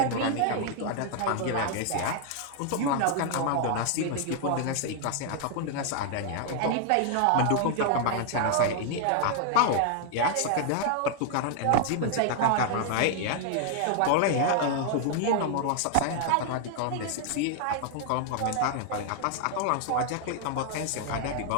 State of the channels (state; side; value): different; both; correlation 0.00